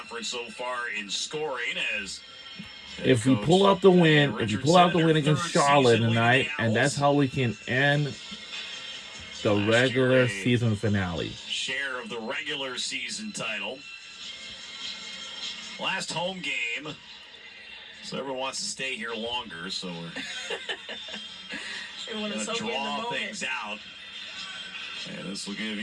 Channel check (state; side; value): identical; both; correlation 1.00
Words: so far in scoring as If we pull out the win, if we pull out the win against Charlotte tonight, and that's how we can end the regular season finale. share of the regular season title. Last home game. So everyone wants to stay here longer, so we're Everyone going is to soaking in the draw moment. things out. And this will give